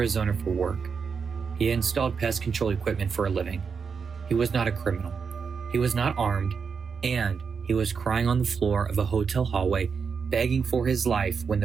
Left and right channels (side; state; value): left; quieter; 5.8 dB